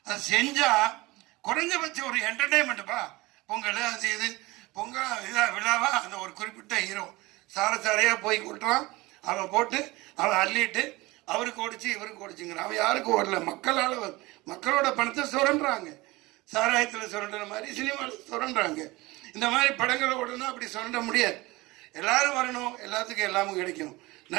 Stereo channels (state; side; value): quieter; left; 21.4 dB